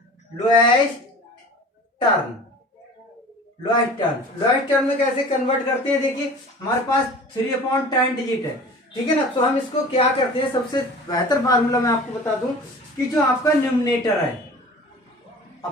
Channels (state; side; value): normal; both; correlation 0.42